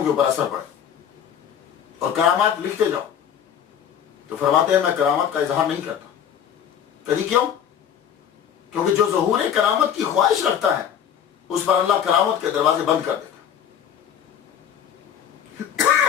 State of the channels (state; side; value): quieter; right; 8.9 dB